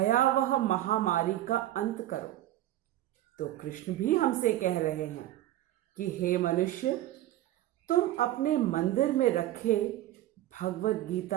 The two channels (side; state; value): left; quieter; 14.2 dB